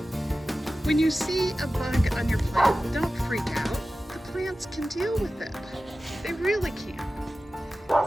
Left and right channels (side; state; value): both; normal; correlation 0.95